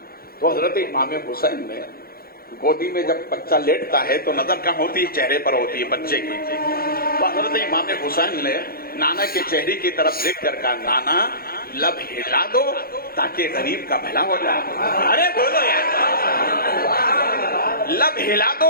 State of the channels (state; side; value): late; right; 0.44 ms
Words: تو حضرت امام حسین نے گودی میں جب بچہ لیٹتا ہے تو نظر کہاں ہوتی ہے، چہرے پر ہوتی ہے بچے کی۔ تو حضرت امام حسین نے نانا کے چہرے کی طرف دیکھ کر کہا نانا لب ہلا دو تاکہ غریب کا بھلا ہو جائے۔ ارے بولو یار، لب ہلا دو